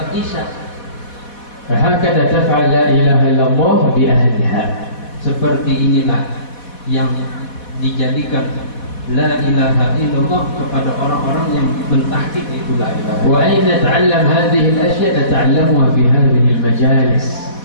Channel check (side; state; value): right; late; 4.1 ms